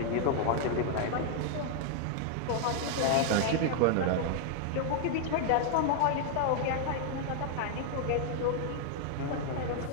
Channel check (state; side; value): different; both; correlation 0.00